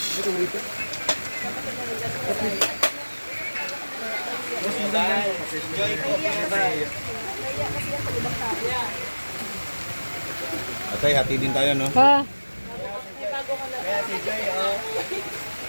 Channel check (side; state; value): both; inverted; correlation -1.00